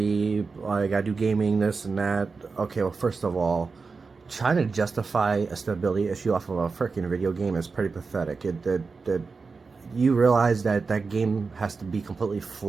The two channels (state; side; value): quieter; left; 4.5 dB